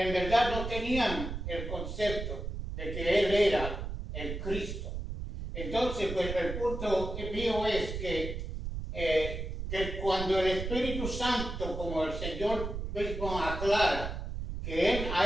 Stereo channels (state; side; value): noise; right; rumble, 5 dB below the sound